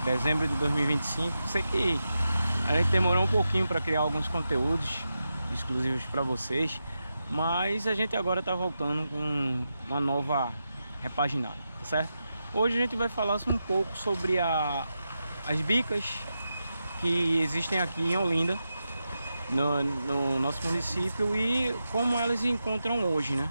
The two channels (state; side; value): inverted; both; correlation -0.89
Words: dezembro de 2025. Sei que a gente demorou um pouquinho para criar alguns conteúdos exclusivos para vocês, mas a gente agora está voltando com uma nova repaginada, tá certo? Hoje a gente vai falar um pouco sobre as bicas que existem aqui em Olinda, no nosso município, e como elas se encontram hoje, né?